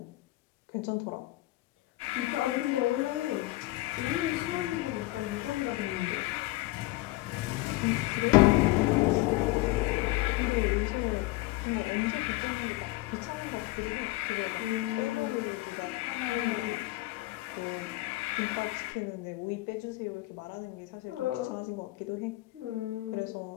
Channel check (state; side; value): quieter; right; 19.2 dB